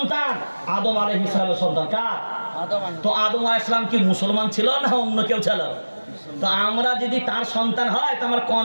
আদম আলাইহিস সালামের সন্তান। কার? তো আদম আলাইহিস সালাম কি মুসলমান ছিল না অন্য কেউ ছিল? তো আমরা যদি তার সন্তান হয়, তো আমার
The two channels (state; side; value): inverted; both; correlation -1.00